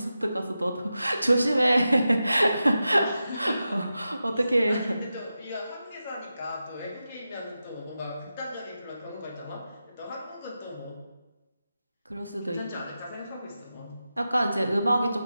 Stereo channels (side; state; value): both; inverted; correlation -0.91